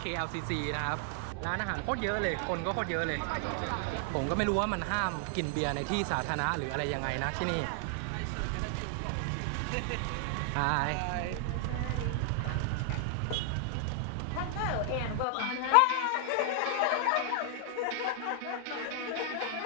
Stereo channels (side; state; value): both; different; correlation 0.00